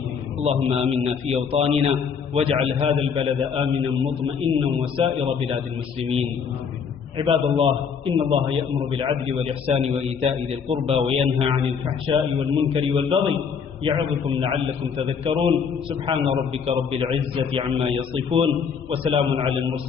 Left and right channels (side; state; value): right; quieter; 6.5 dB